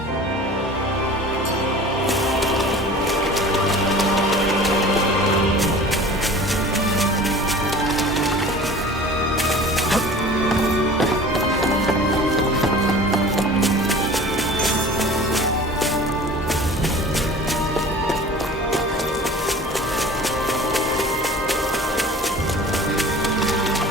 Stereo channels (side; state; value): both; normal; correlation 0.42